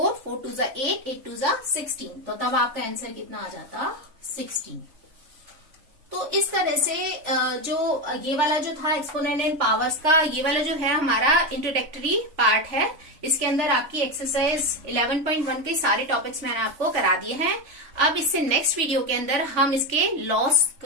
4 2 = 8, 8 2 = 16, तो तब आपका आंसर कितना आ जाता, 16। तो इस तरह से जो ये वाला जो था एक्सपोनेंट एंड पावर्स का, ये वाला जो है हमारा इंट्रोडक्टरी पार्ट है। इसके अंदर आपकी एक्सरसाइज 11.1 के सारे टॉपिक्स मैंने आपको करा दिए हैं। अब इससे नेक्स्ट वीडियो के अंदर हम इसके लॉस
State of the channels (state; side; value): late; left; 3.4 ms